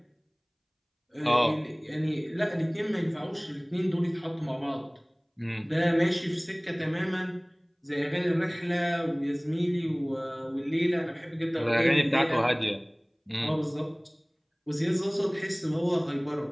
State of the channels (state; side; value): identical; both; correlation 1.00